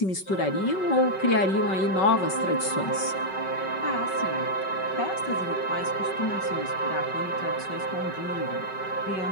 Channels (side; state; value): right; late; 5.3 ms